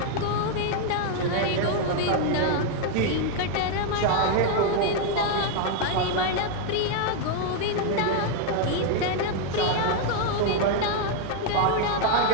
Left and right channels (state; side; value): different; both; correlation 0.00